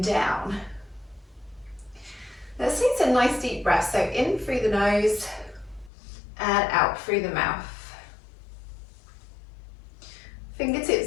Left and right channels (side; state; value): right; drops out; at 5.9 s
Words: down. Let's take some nice deep breaths. So in through the nose and out through the mouth.